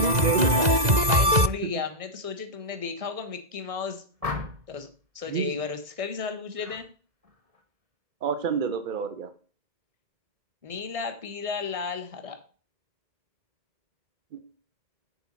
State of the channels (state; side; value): late; left; 2.0 ms